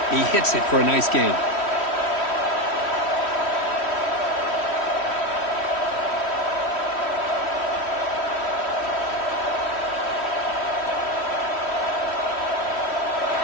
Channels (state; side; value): late; right; 3.1 ms